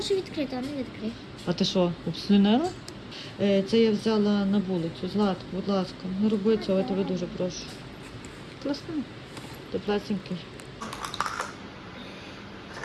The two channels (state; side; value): identical; both; correlation 1.00